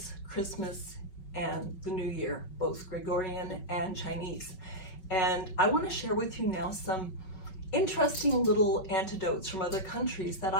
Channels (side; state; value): right; late; 5.3 ms